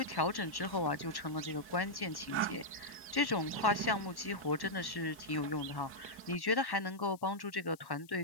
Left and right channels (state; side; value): noise; left; hiss, 25 dB below the sound